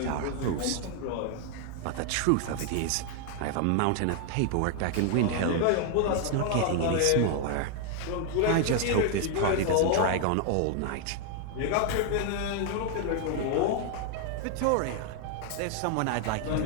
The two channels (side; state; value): both; different; correlation 0.00